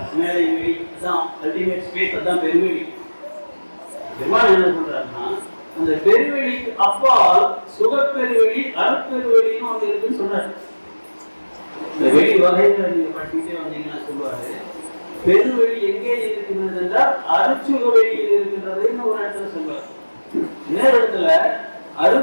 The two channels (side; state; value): both; inverted; correlation -1.00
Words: மேலை வெளி தான் அல்டிமேட் ஸ்பேஸ், அதுதான் பெருவெளி. பெருமாள் என்ன சொல்றாருன்னா, அந்த பெருவெளிக்கு அப்பால் சுகப்பெருவெளி, அருட்பெருவெளின்னு ஒன்று இருக்குன்னு சொல்றாரு. இந்த வெளி வகைகளை நீங்க படிச்சுட்டே வந்தீங்கன்னா சொல்லுவாரு, பெருவெளி எங்கே இருக்கின்றது என்றால் அருட்சுக வெளியில் இருக்கின்றதுன்னு ஒரு இடத்துல சொல்லுவார். இன்னொரு இடத்துல